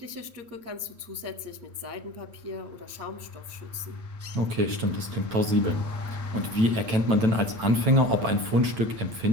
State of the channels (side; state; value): left; late; 9.0 ms